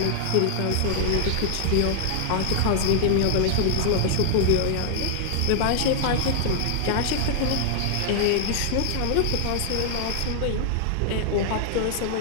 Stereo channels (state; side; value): different; both; correlation 0.00